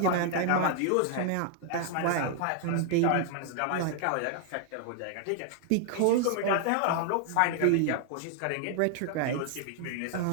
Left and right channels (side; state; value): both; different; correlation 0.00